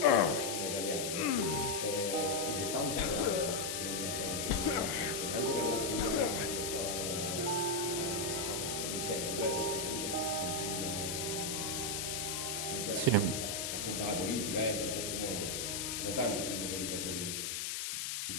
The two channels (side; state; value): left; noise; hiss, 2 dB below the sound